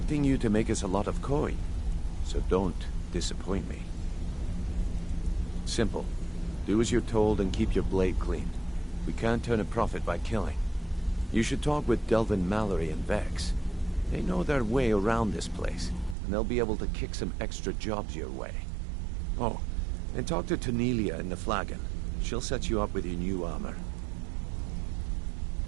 you to make us a lot of coin, so don't disappoint me. Simple. Do as you're told and keep your blade clean. We can't turn a profit by killing. You should talk with Delvin Mallory and Vex. They know their way around this place, and they'll be able to kick some extra jobs your way. Oh, and talk to Tonelia in the Flagon. She'll set you up with your new armor.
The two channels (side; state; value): left; drops out; at 16.2 s